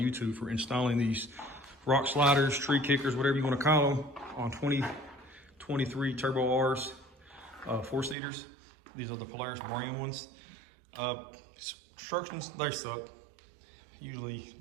YouTube for installing these rock sliders, tree kickers, whatever you want to call them, on 2023 Turbo R's 4-seaters. These are the Polaris brand ones. Instructions, they suck. Usually,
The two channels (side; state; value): left; drops out; at 8.2 s